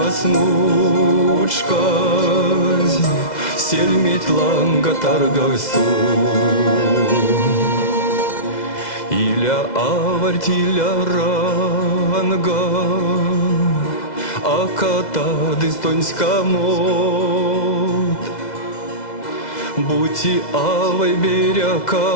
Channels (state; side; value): late; right; 2.0 ms